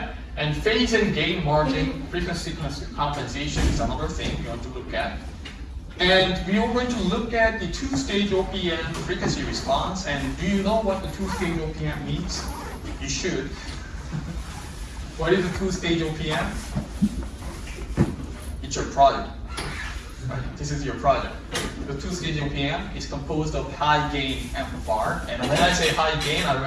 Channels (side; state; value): both; identical; correlation 1.00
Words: And phase and gain margin, frequency compensation is another thing you want to look at. And we are going to look at the two-stage OPM frequency response. And do you know what the two-stage OPM means? You should. What is a two-stage OPM? It's your project. Right? This is your project. The two-stage OPM is composed of high-gain amplifier. And when I say high gain, I